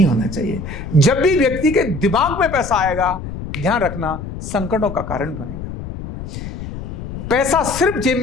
होना चाहिए। जब भी व्यक्ति के दिमाग में पैसा आएगा, ध्यान रखना, संकटों का कारण बनेगा। पैसा सिर्फ जेब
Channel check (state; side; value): noise; left; rumble, 9 dB below the sound